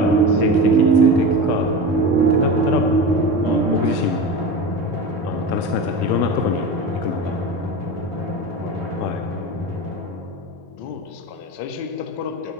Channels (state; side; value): late; right; 3.7 ms